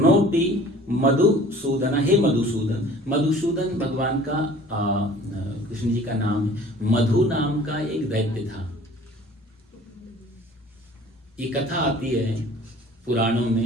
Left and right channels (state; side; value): normal; both; correlation 0.48